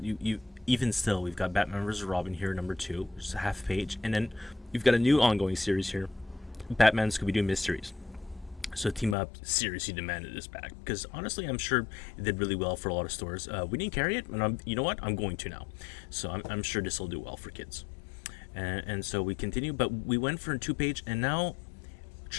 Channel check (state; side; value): drops out; right; at 9.2 s